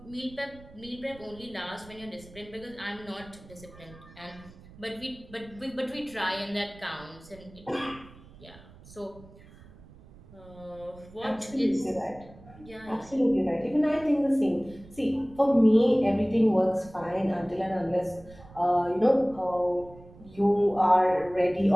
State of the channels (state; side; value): noise; right; rumble, 21 dB below the sound